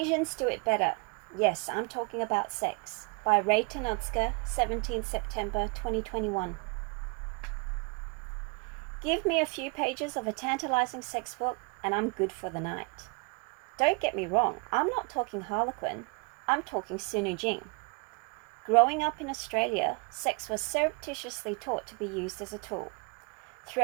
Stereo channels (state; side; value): quieter; left; 32.2 dB